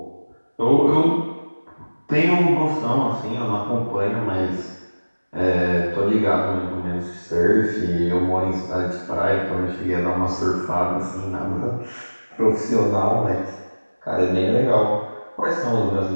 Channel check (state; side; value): inverted; both; correlation -1.00